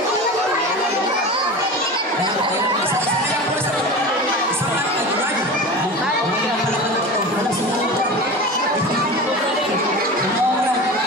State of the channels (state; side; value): normal; both; correlation 0.31